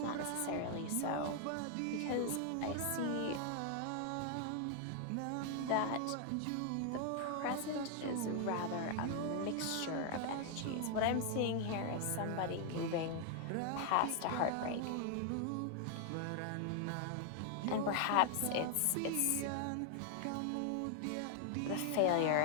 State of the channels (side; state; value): both; different; correlation 0.00